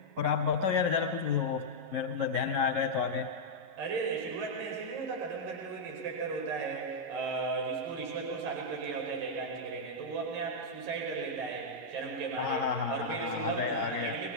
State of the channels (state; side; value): late; left; 11 ms